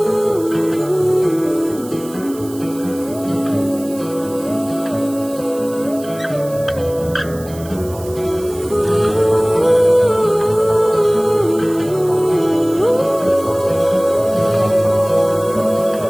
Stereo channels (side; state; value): right; noise; hiss, 19 dB below the sound